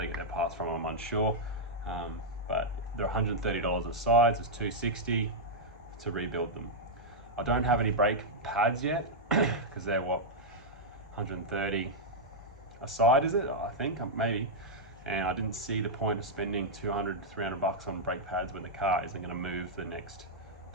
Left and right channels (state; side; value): normal; both; correlation -0.05